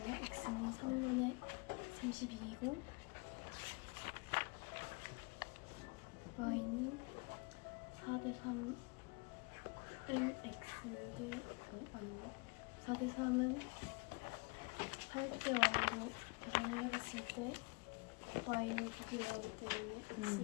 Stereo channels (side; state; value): right; quieter; 30.0 dB